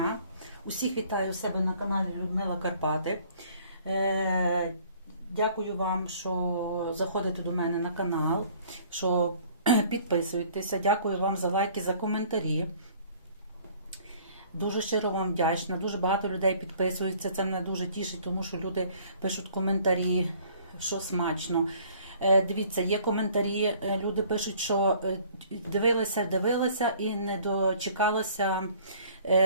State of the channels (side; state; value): both; inverted; correlation -0.56